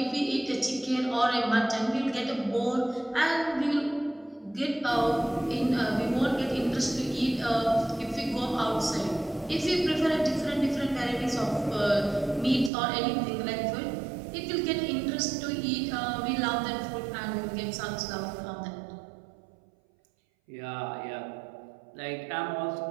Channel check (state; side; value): drops out; left; at 12.7 s